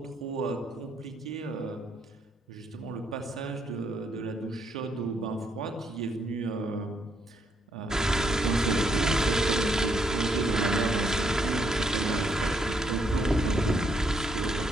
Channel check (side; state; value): both; normal; correlation 0.74